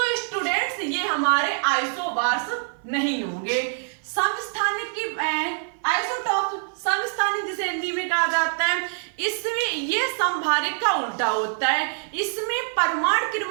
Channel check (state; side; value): silent; left; 57 dB below the other